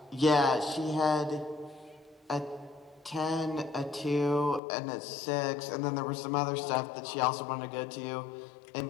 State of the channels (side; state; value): right; drops out; at 4.6 s